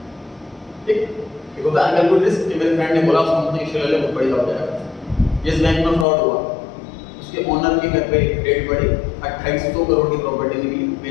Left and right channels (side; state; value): right; drops out; at 6.1 s